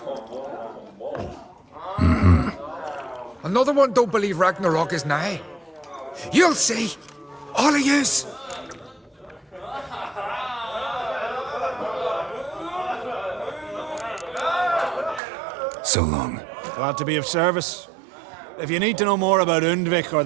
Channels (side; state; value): left; drops out; at 15.2 s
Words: Another one don't believe Ragnarok is nigh. You'll see. All of yous. So long. Glad to be of service. If you need to know more about Undvik or